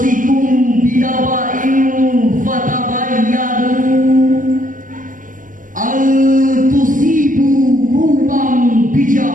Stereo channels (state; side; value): late; left; 0.39 ms